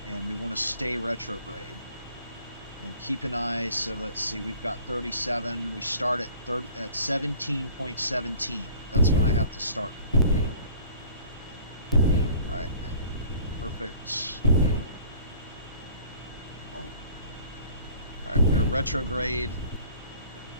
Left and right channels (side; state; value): both; inverted; correlation -0.49